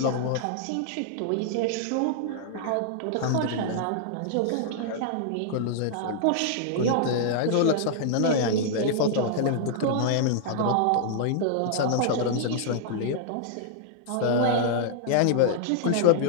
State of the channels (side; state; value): both; different; correlation -0.01